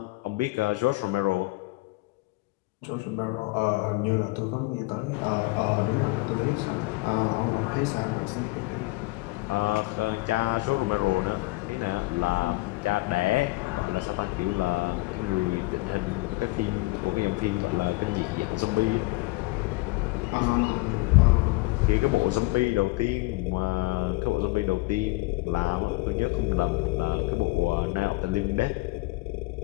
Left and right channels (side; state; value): right; quieter; 22.8 dB